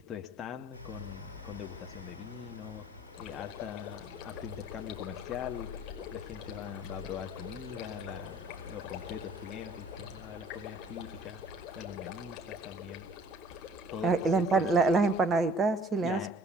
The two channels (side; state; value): both; normal; correlation 0.54